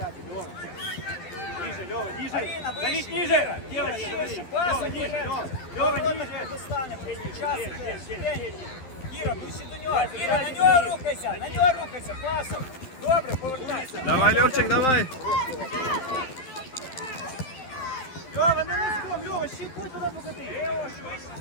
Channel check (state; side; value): late; right; 12 ms